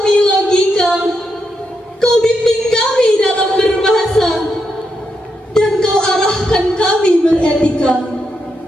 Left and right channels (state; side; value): normal; both; correlation 0.83